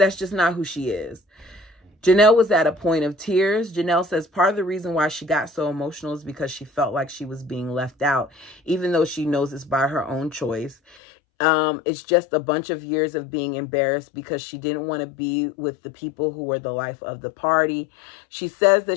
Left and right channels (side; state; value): right; drops out; at 11.0 s